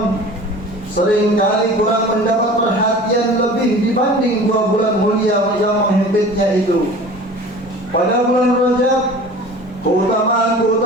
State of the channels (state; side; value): normal; both; correlation 0.41